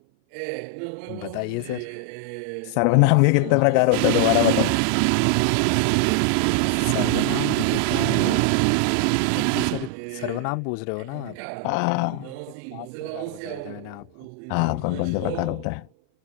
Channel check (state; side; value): different; both; correlation 0.00